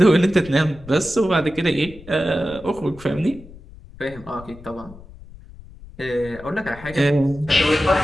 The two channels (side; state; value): left; noise; rumble, 19 dB below the sound